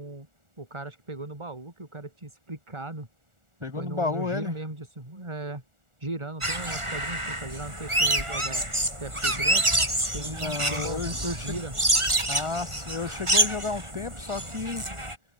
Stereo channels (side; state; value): left; late; 1.4 ms